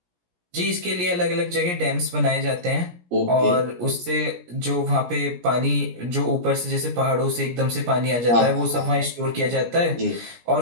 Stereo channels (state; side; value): late; left; 17 ms